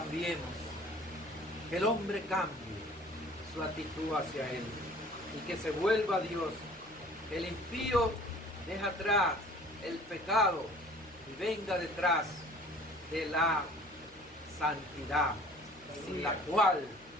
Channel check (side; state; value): left; noise; hum, 28 dB below the sound